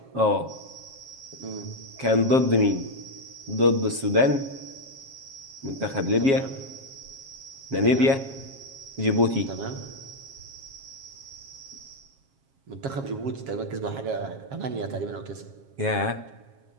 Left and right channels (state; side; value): late; left; 7.4 ms